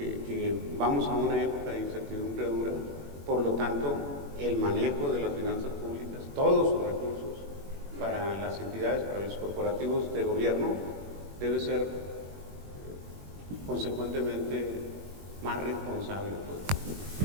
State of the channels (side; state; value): left; late; 21 ms